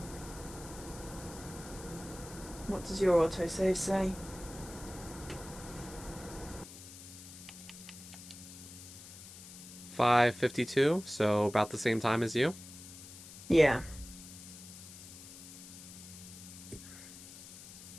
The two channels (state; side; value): noise; left; hiss, 15 dB below the sound